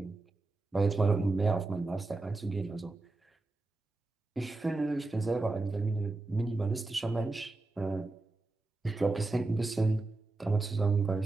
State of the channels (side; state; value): left; quieter; 3.2 dB